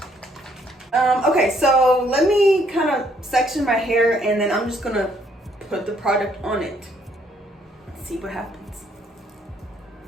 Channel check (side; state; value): both; normal; correlation 0.68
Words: Okay, so let me kind of section my hair and then I'm just gonna put the product on it. See what happens.